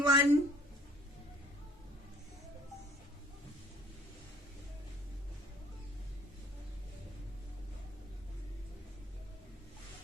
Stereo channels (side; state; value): both; normal; correlation 0.55